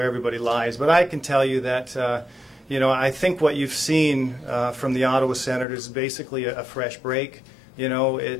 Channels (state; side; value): drops out; right; at 5.7 s